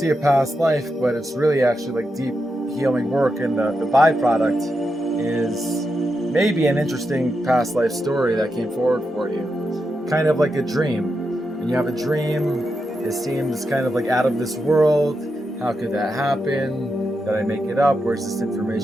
a past life, but it's really actually like deep healing work, and the byproduct is maybe an interesting past life story that came forward for you. Kind of like a dream. When you have a dream, it seems kind of like out of this world. How could that happen? Did I make it up? Where's this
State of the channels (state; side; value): normal; both; correlation 0.86